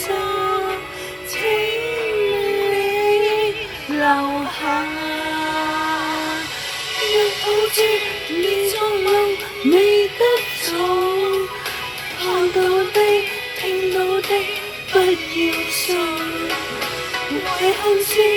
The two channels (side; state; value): both; identical; correlation 1.00